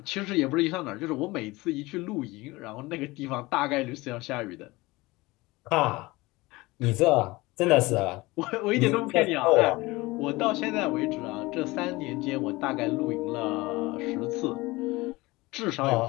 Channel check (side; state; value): right; quieter; 21.5 dB